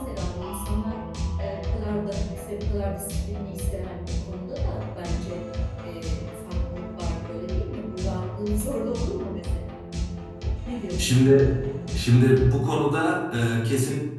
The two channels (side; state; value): both; identical; correlation 1.00